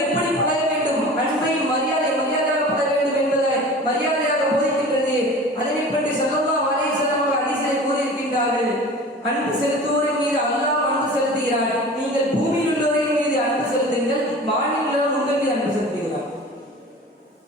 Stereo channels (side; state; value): both; normal; correlation 0.39